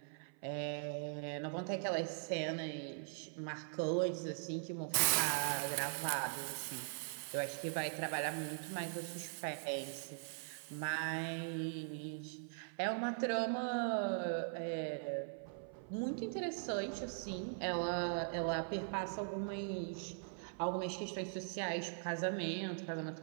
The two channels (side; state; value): left; silent; 50 dB below the other